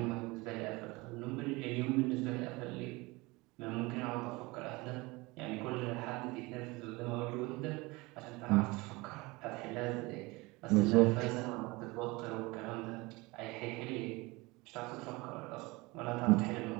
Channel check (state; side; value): quieter; left; 23.5 dB